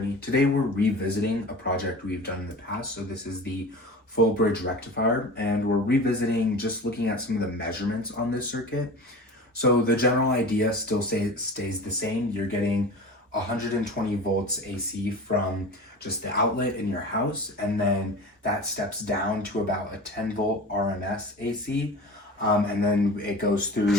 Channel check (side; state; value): both; normal; correlation 0.35